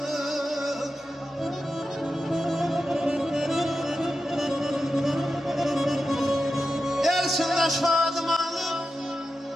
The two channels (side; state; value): both; normal; correlation 0.90